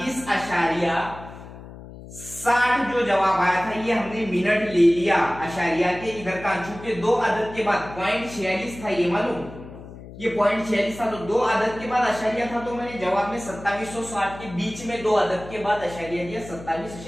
60 जो जवाब आया था ये हमने मिनट ले लिया आशारिया के इधर का, चूंकि 2 अदद के बाद .46 था, ये मालूम, ये .46 था, तो 2 अदद के बाद आशारिया था, तो मैंने जवाब में 2760 के बीच में 2 अदद के बाद आशारिया दिया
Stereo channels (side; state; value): left; noise; hum, 15 dB below the sound